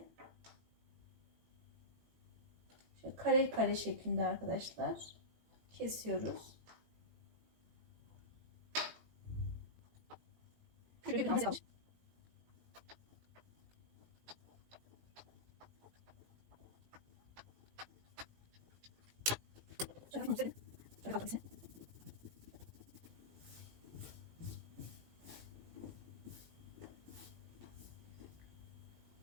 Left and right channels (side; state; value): left; late; 18 ms